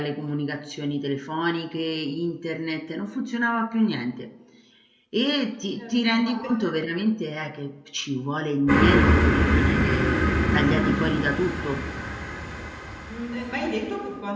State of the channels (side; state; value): both; identical; correlation 1.00